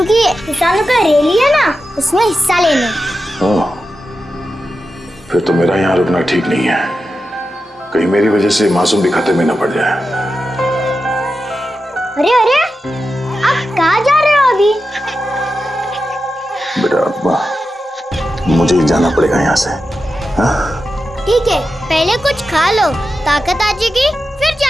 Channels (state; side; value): normal; both; correlation 0.90